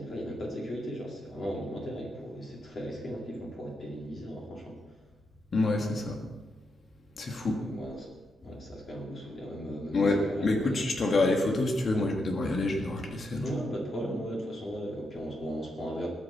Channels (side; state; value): both; normal; correlation 0.83